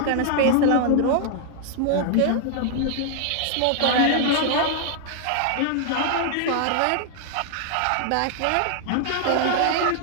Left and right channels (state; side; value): different; both; correlation 0.00